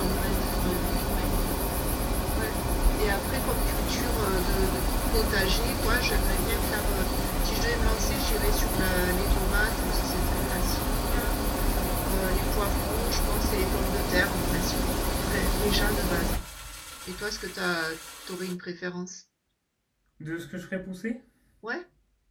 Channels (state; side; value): identical; both; correlation 1.00